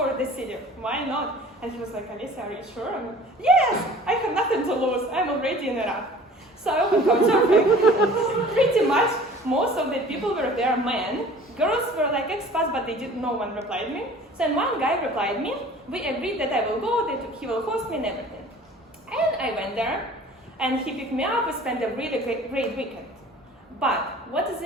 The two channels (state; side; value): normal; both; correlation 0.47